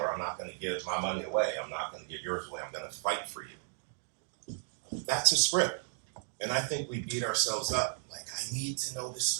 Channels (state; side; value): silent; left; 55 dB below the other